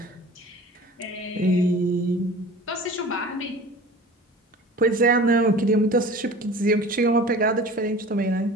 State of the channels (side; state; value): both; normal; correlation 0.40